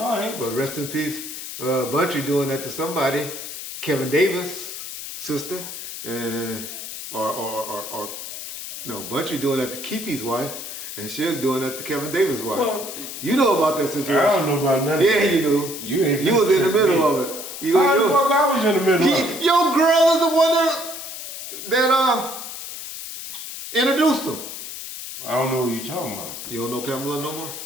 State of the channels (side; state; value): left; noise; hiss, 9 dB below the sound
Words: I ain't. But rest in peace, Buntry doing that to somebody. Kevin Davis' sister, or no, Buntry doing that to Keefe's wife, and Suge doing that to Kevin Davis' wife. Well, you know about that situation? I don't know about nothing. Yeah, you do. You was in the middle of it. You I was in the middle of it. Your girl is the one that introduced him. I don't know what you're talking about. You don't know Pamela no more?